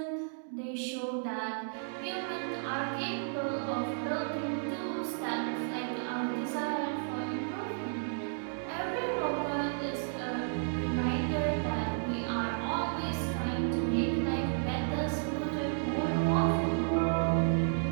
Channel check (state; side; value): silent; left; digital silence